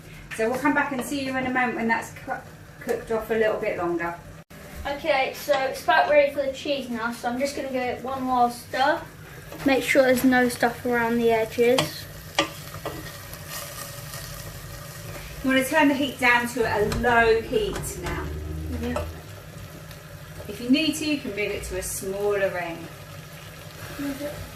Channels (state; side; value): identical; both; correlation 1.00